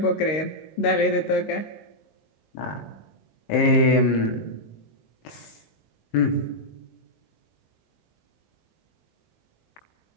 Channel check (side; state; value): right; late; 19 ms